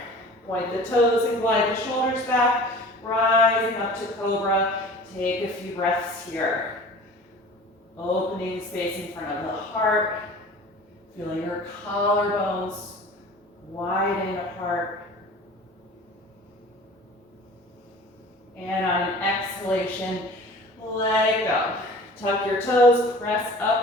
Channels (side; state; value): both; normal; correlation 0.42